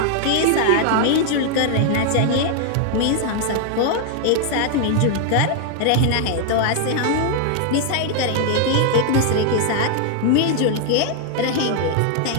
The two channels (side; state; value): both; different; correlation 0.00